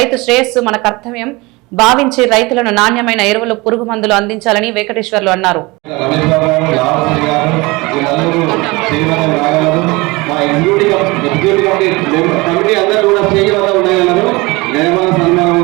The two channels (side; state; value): left; quieter; 23.8 dB